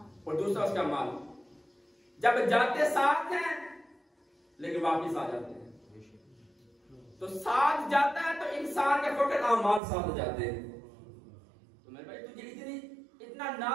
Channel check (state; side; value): drops out; left; at 9.8 s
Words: اور دوسرا اس کا مال. جب جاتے ساتھ ہیں لیکن واپس آ جاتے ہیں. تو ساتھ جاتا ہے تو انسان کے فقط اعمال ساتھ جاتے ہیں. تو میرے بھائی تجھے اتنا